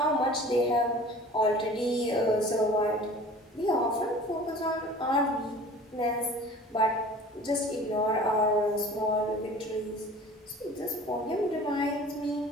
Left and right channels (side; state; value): both; normal; correlation 0.44